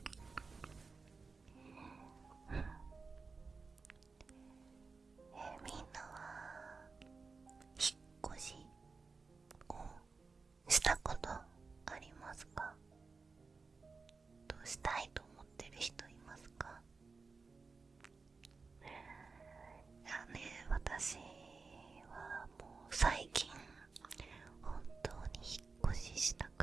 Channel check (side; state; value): left; quieter; 4.4 dB